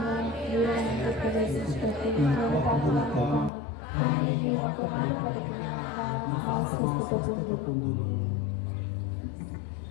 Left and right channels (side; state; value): right; drops out; at 3.5 s